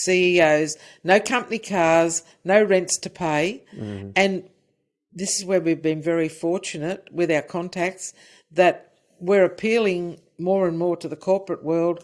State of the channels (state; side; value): identical; both; correlation 1.00